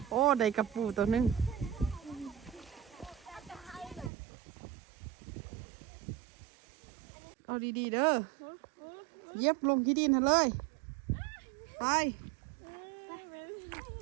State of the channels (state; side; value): drops out; left; at 4.1 s